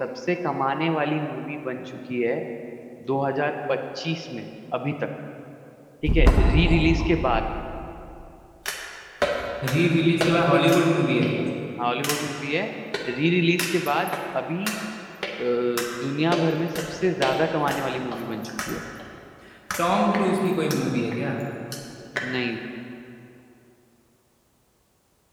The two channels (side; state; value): both; identical; correlation 1.00